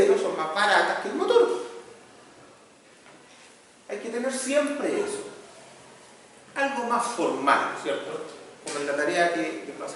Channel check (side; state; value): both; identical; correlation 1.00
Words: son más baratas que el motor. Hay que tener siempre eso. Algo más formal, ¿cierto? Como en la tarea que va a